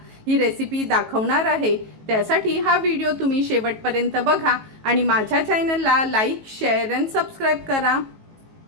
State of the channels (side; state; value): left; late; 18 ms